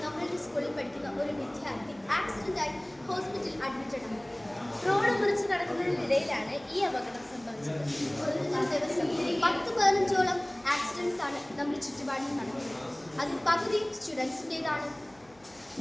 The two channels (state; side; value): noise; left; hum, 29 dB below the sound